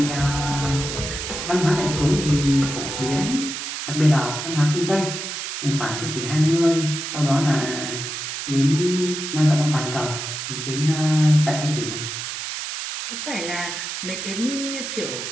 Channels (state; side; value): noise; right; hiss, 5 dB below the sound